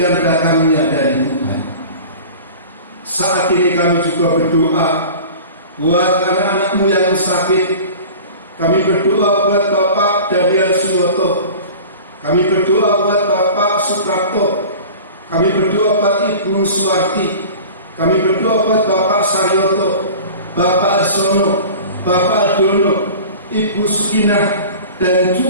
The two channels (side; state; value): both; inverted; correlation -0.39